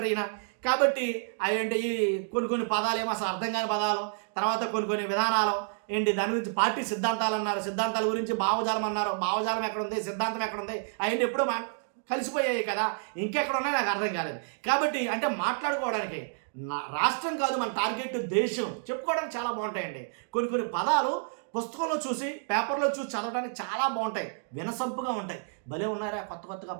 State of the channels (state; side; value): silent; left; digital silence